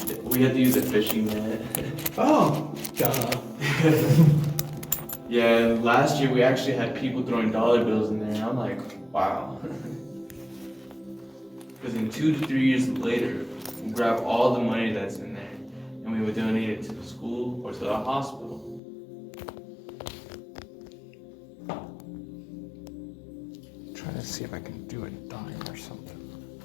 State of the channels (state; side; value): drops out; right; at 18.8 s